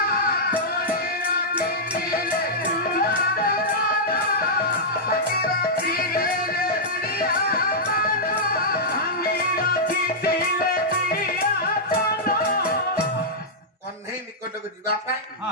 କଣ୍ଢେଇ ନିକଟକୁ ଯିବା ପାଇଁ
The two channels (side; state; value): both; normal; correlation -0.09